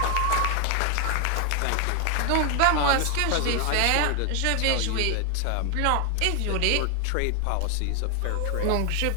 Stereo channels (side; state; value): both; different; correlation 0.00